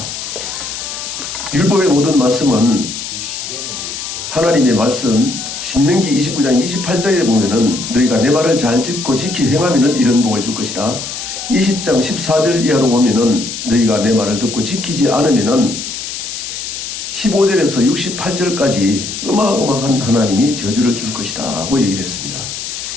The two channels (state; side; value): noise; left; hiss, 7 dB below the sound